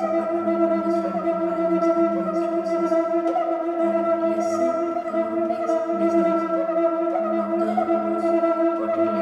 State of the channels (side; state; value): both; identical; correlation 1.00